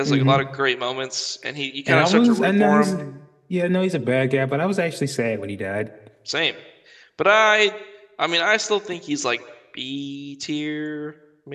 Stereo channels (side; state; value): both; identical; correlation 1.00